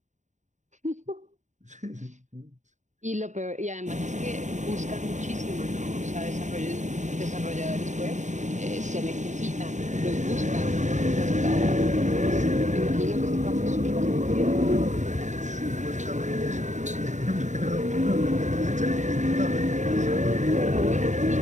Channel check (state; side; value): late; left; 0.35 ms